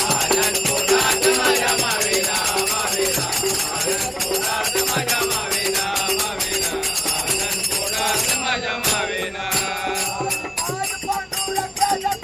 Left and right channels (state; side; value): identical; both; correlation 1.00